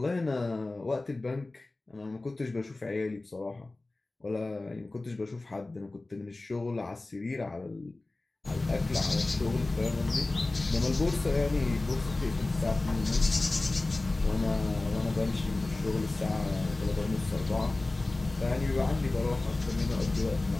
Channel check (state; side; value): quieter; right; 3.0 dB